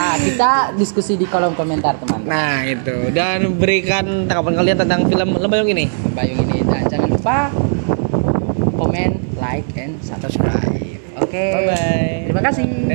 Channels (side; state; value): left; silent; 58 dB below the other